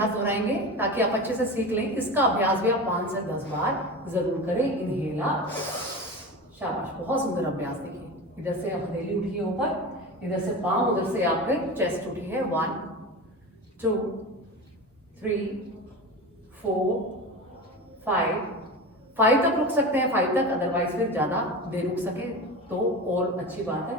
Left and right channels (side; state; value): both; normal; correlation 0.28